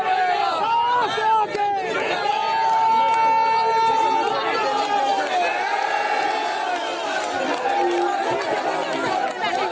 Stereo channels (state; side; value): identical; both; correlation 1.00